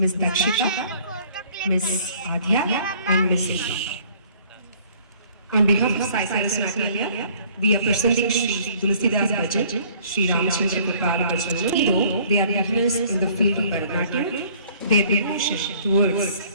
Dakshita, Miss Adya, and Miss Eva. On behalf of Sai Saraswati, we are presenting Sri Tulsidas Bhajan, Sri Ramachandra Kripala Bhajan. Though they are beginners in the field of Bharatanatyam, their devotion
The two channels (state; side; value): inverted; both; correlation -0.56